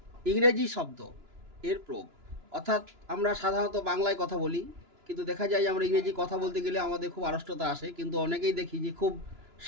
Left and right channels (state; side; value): late; left; 2.9 ms